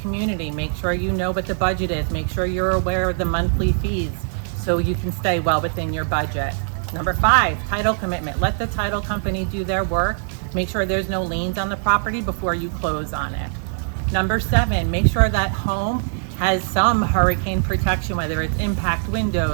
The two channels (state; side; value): silent; left; digital silence